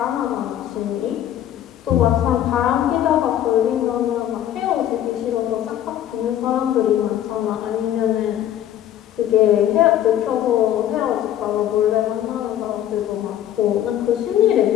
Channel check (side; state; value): right; quieter; 11.4 dB